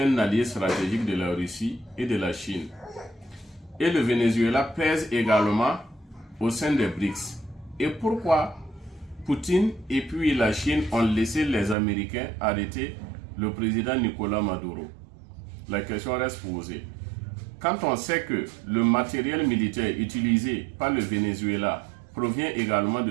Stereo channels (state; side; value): drops out; left; at 11.8 s